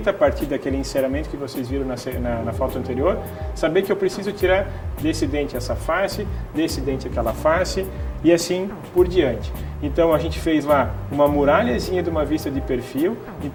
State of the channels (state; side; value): identical; both; correlation 1.00